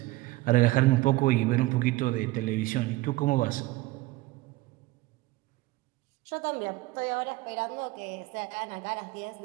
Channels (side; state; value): left; quieter; 19.5 dB